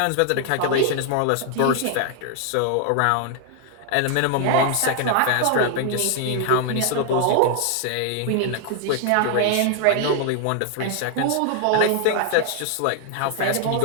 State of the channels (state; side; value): different; both; correlation 0.00